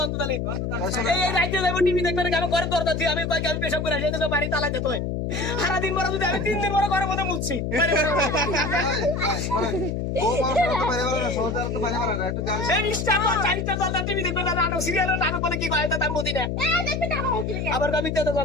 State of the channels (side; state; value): left; noise; hum, 2 dB below the sound